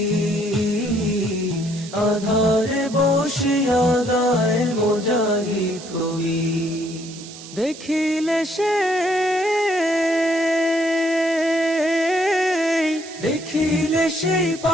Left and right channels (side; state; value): right; noise; hiss, 16 dB below the sound